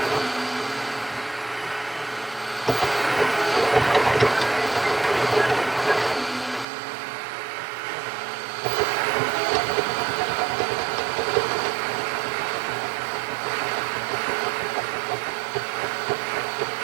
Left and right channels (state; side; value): drops out; left; at 6.7 s